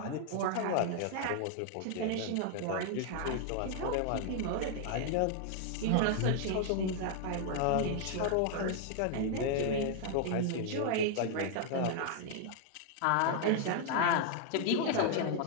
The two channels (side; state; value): both; different; correlation 0.00